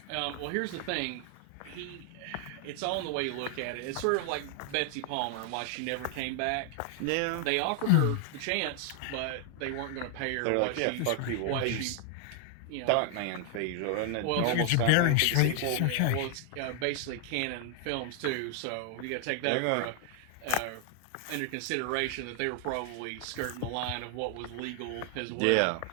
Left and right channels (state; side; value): different; both; correlation 0.00